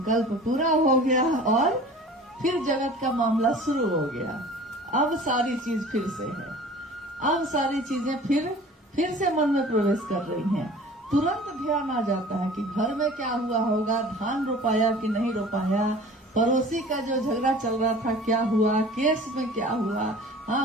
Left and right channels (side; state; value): both; normal; correlation 0.44